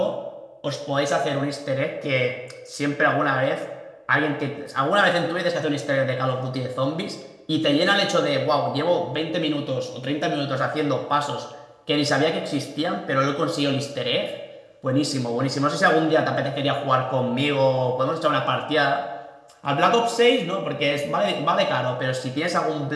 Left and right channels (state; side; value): identical; both; correlation 1.00